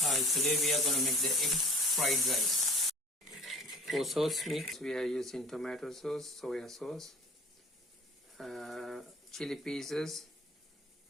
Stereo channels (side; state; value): both; normal; correlation 0.45